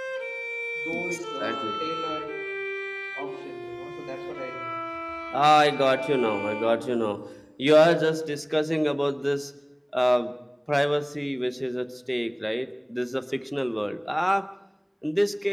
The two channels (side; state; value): both; identical; correlation 1.00